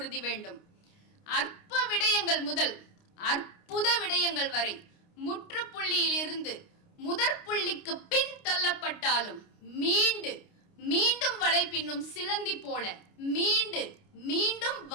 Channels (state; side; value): late; right; 29 ms